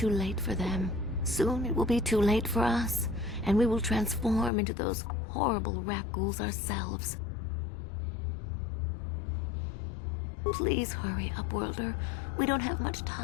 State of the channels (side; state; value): right; drops out; at 4.5 s